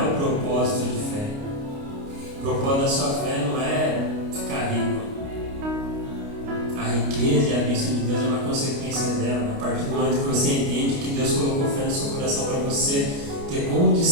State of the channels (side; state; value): left; late; 29 ms